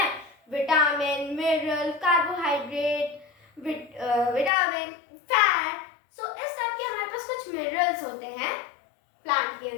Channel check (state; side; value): drops out; right; at 4.5 s